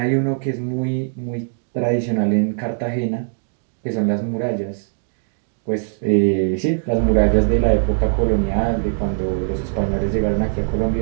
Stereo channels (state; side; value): silent; left; 60 dB below the other